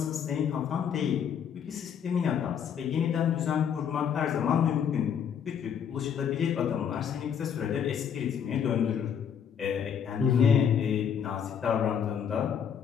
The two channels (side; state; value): right; quieter; 8.0 dB